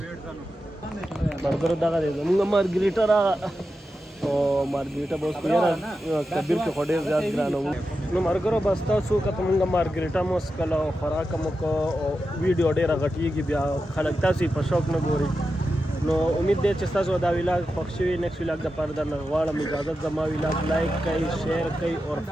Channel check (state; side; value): normal; both; correlation 0.90